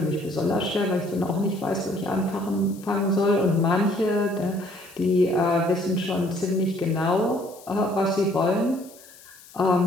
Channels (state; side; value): noise; left; hiss, 22 dB below the sound